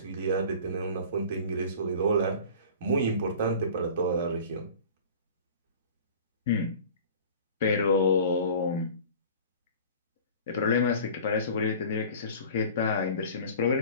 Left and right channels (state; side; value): inverted; both; correlation -0.42